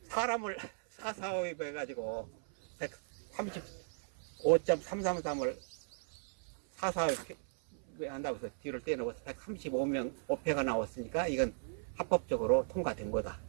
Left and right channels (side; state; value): left; silent; 53 dB below the other